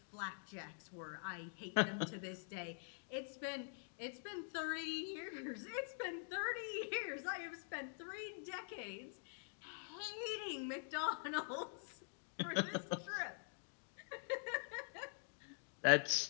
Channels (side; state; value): right; silent; digital silence